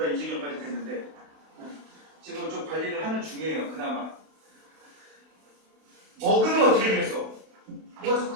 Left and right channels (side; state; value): left; late; 32 ms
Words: 이 지경까지 됐는데 지금 좀 관리를 하는 중이에요. 그나마. 먹으면 어떻게 되겠어? 뭐가 자꾸